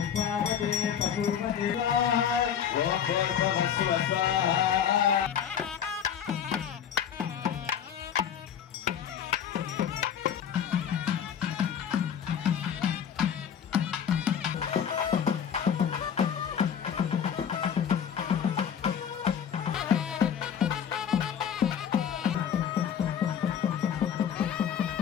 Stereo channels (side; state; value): right; quieter; 8.5 dB